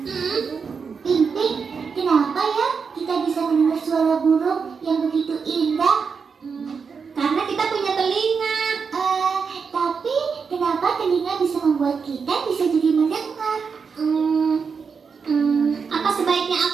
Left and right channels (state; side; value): quieter; left; 5.7 dB